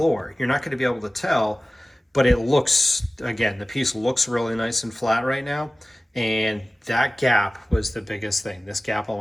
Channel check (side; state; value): both; normal; correlation 0.97